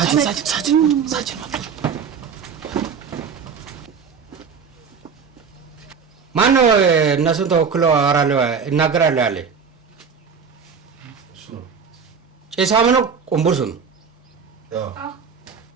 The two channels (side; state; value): left; quieter; 6.2 dB